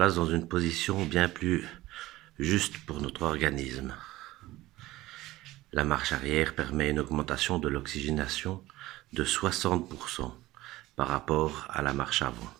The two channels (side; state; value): left; quieter; 17.4 dB